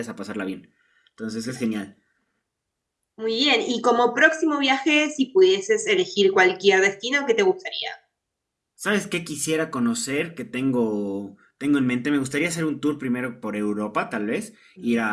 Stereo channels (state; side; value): identical; both; correlation 1.00